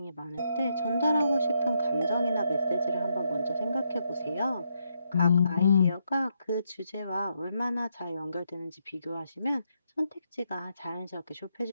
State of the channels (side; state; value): both; inverted; correlation -0.79